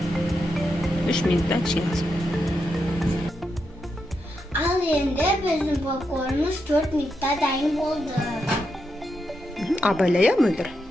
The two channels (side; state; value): both; normal; correlation 0.84